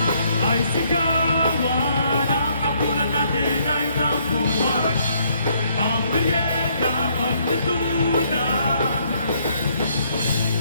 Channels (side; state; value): both; inverted; correlation -0.68